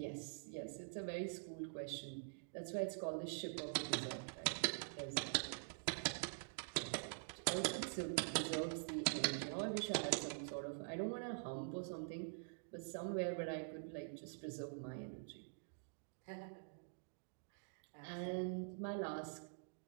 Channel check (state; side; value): silent; left; digital silence